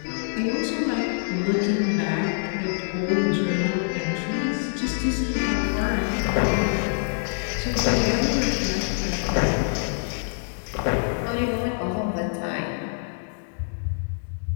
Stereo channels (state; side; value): silent; right; digital silence